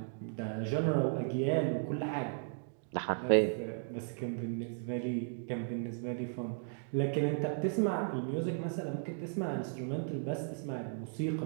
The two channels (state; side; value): silent; left; digital silence